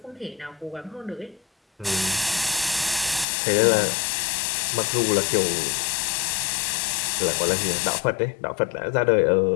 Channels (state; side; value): drops out; right; at 3.2 s